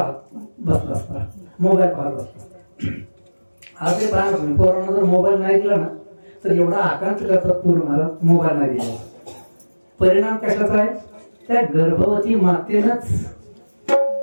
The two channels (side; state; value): both; inverted; correlation -1.00